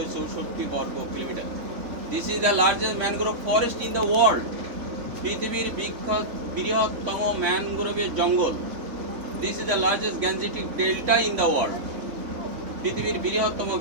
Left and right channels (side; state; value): left; late; 3.4 ms